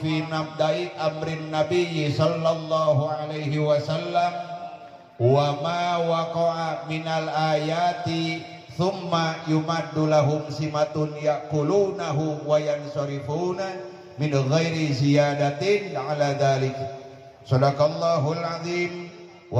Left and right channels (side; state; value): both; identical; correlation 1.00